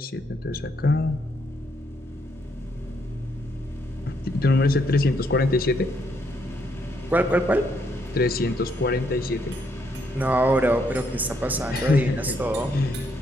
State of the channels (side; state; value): both; normal; correlation 0.74